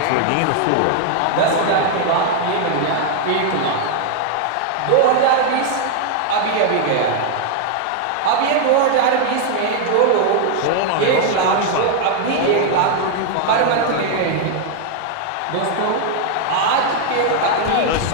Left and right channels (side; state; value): both; different; correlation 0.00